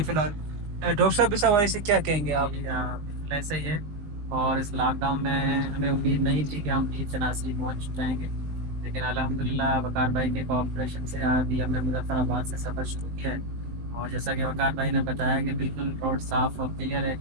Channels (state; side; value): late; left; 19 ms